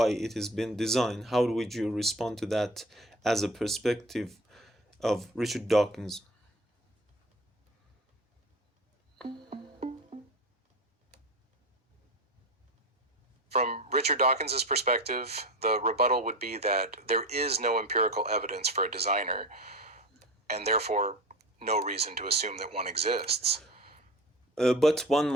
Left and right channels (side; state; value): both; normal; correlation 0.32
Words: it has been designed. How would you respond to that as a perspective of Richard Dawkins? From Richard Dawkins's perspective, the rebuttal would be that there is no empirical evidence for a designer, and therefore no reason to assume that one exists. But one